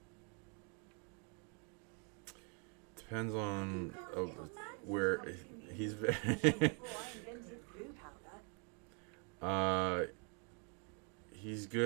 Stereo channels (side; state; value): left; quieter; 37.7 dB